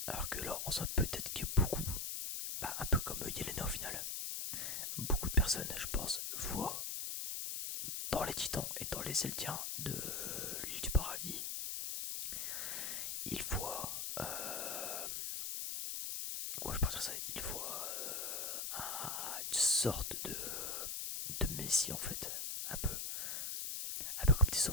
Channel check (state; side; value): noise; left; hiss, 2 dB below the sound